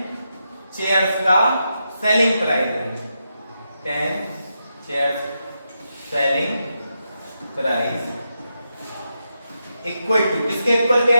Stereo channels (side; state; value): both; inverted; correlation -0.86